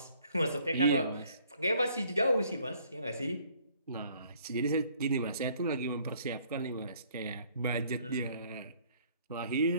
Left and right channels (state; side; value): inverted; both; correlation -0.61